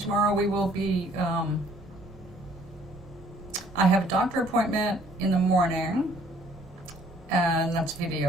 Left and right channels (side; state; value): both; normal; correlation 0.59